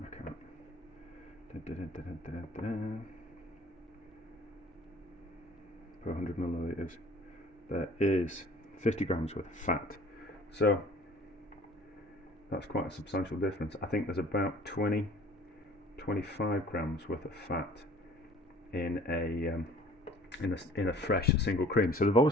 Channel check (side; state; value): both; normal; correlation 0.50